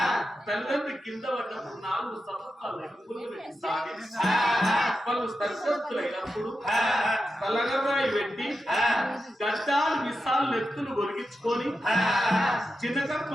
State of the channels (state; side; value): normal; both; correlation 0.89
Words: తల్లిదండ్రి కింద పడినప్పుడు 4 సంవత్సరాలు వాళ్ళు సర్కస్తులైనప్పుడు తలగరాయి పెట్టి గడ్డాలు విశాలు నెత్తులు ఒరిగించుకొని చిన్న కర్మ